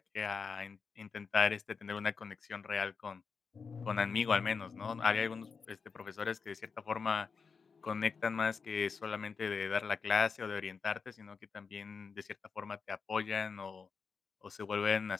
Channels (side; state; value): right; quieter; 5.4 dB